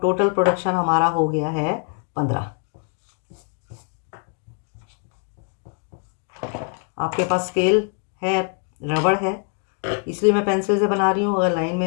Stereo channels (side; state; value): right; quieter; 39.8 dB